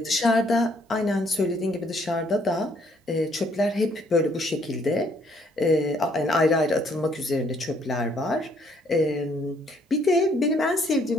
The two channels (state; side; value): normal; both; correlation 0.66